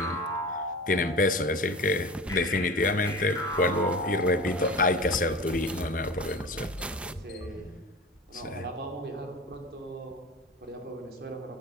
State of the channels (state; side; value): normal; both; correlation 0.33